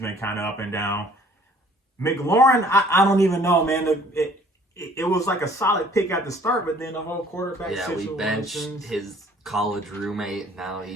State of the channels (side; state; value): both; normal; correlation 0.55